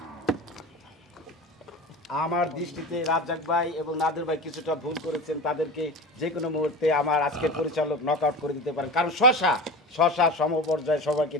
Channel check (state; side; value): normal; both; correlation 0.30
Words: আমার দৃষ্টিতে রাজ্জাক ভাই এবং নাদের ভাই কিছুটা ভুল করেছেন, তাদেরকে যে কোনো মুহূর্তে আমার আজকের পরিচালক নক আউট করে দিতে পারেন। কারণ শশা সমপর্যায়ে সবাইকে